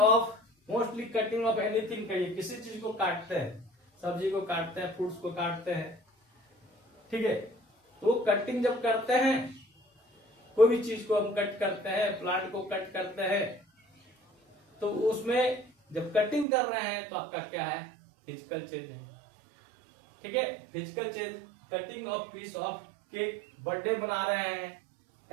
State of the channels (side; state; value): left; drops out; at 16.4 s